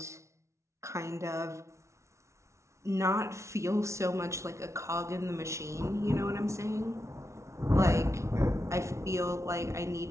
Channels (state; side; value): late; left; 0.14 ms